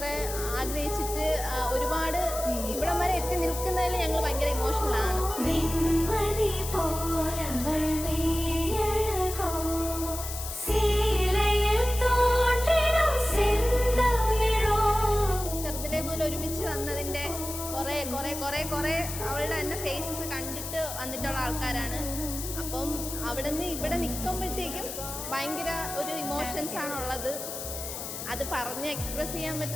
ആഗ്രഹിച്ചിട്ട് ഒരുപാട് ഇവിടം വരെ എത്തി നിൽക്കുന്നതിൽ ഞങ്ങൾ ഭയങ്കര ഇമോഷണലാണ്. ചെറുതിലേ മുതൽ ഒരുമിച്ച് വന്നതിൻ്റെ കുറേ അവളുടെ തന്നെ ഫേസസ് കണ്ടിട്ട് വന്നിട്ടുള്ള ആൾക്കാരാണ്. അപ്പം അവിടെ നിന്ന് ഇവിടെ നിൽക്കുമ്പോഴത്തേക്കും ഭയങ്കര ഒരു ഇമോഷൻസ് ആണുള്ളത്. അത് പറഞ്ഞ് എക്സ്പ്രസ് ചെയ്യാൻ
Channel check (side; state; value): left; noise; hiss, 7 dB below the sound